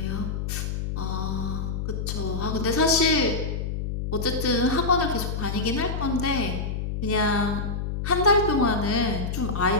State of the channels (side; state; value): left; noise; hum, 3 dB below the sound